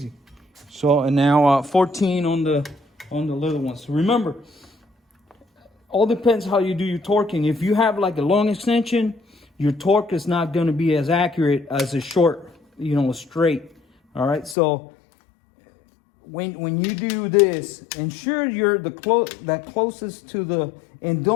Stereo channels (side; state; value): right; drops out; at 14.6 s